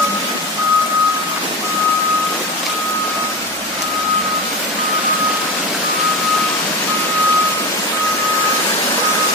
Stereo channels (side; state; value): both; normal; correlation 0.25